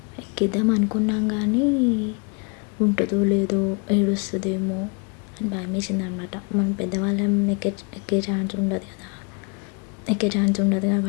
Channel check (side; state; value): right; quieter; 34.3 dB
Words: ఎక్కిద్దాం అనుకున్నాం కానీ ఉంటుందో లేదో, ఏడుస్తుందేమో అని భయం వేసింది అనమాట. మనం పెద్దవాళ్ళం ఎక్కే ఛాన్స్ ఉండదు